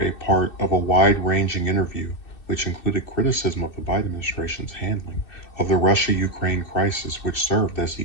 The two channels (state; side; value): late; right; 2.6 ms